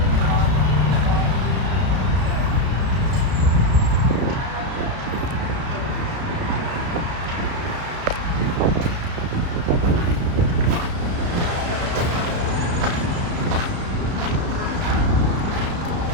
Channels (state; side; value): late; left; 32 ms